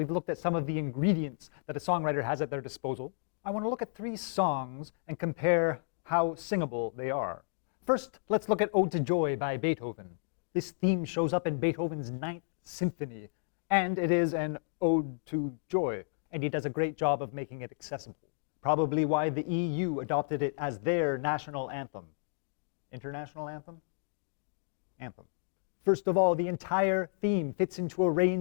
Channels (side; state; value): right; silent; digital silence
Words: looked at some of the ingredients that a songwriter has at their disposal, I want to look at 3 songs and compare how singable they are. First, let's look at Ode to Joy by Beethoven. This theme shows up in Beethoven's 9th Symphony, and it is an ode to joy, and he does a great job of making it accessible. Probably why the EU adopted it as their national anthem. International anthem? Anthem. First of all, the entire theme fits into a